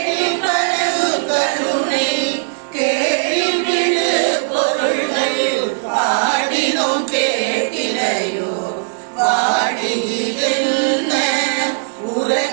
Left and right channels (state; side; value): silent; left; digital silence